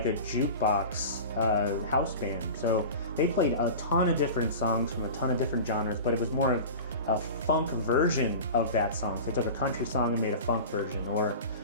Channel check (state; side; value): inverted; both; correlation -0.33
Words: a jukebox house band. So they played a ton of different songs from a ton of different genres, but it was more of a funk version of that song. So they took a country song and made a funk version, or